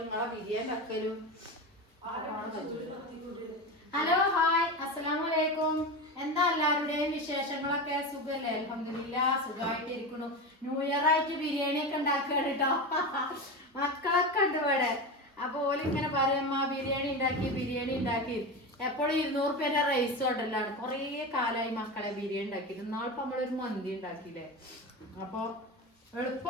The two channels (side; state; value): both; normal; correlation 0.23